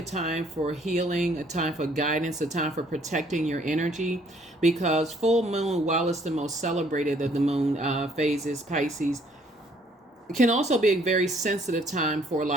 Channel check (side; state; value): both; normal; correlation 0.63